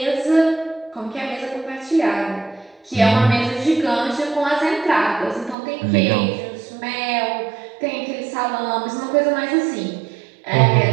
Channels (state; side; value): drops out; left; at 5.6 s